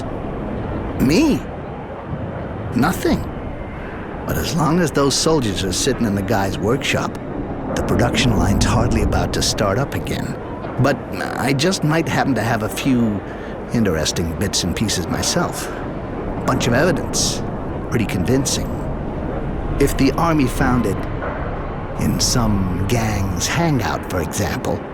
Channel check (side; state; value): both; identical; correlation 1.00